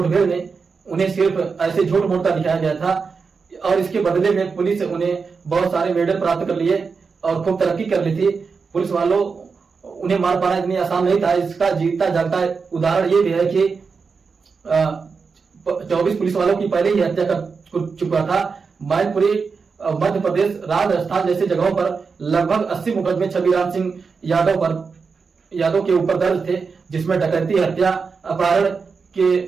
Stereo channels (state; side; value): quieter; left; 5.1 dB